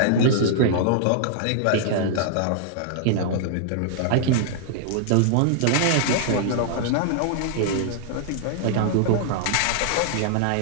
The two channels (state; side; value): different; both; correlation -0.01